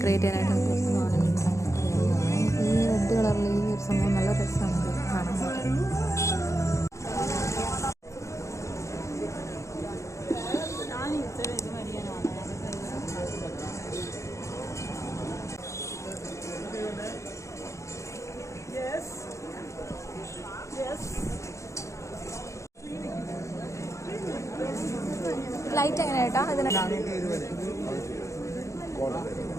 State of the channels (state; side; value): late; right; 0.15 ms